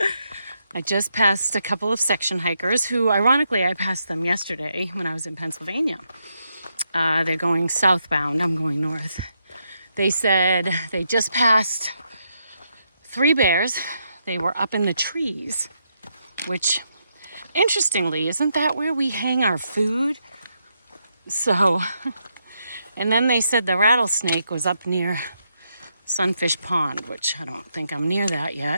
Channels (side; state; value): both; inverted; correlation -0.80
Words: I just passed a couple of section hikers who, ironically, I passed them yesterday when I was in Pennsylvania. They're going southbound, I'm going north. They said they just passed 3 bears. They were up in the trees, which Interestingly, isn't that where we hang our food? So, and then they said the rattlesnake was up near Sunfish Pond, which I don't think I'm near that